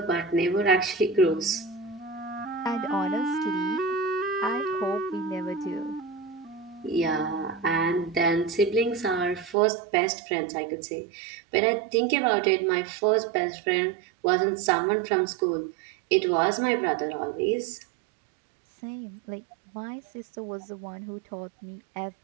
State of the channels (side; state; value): left; drops out; at 9.6 s